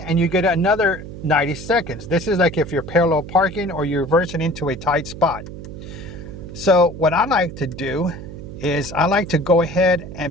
you get another 90 seconds. This is like if you're parallel parking or you're reversing into a tight spot. So what I like to do is I like to go ahead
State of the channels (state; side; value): noise; right; hum, 11 dB below the sound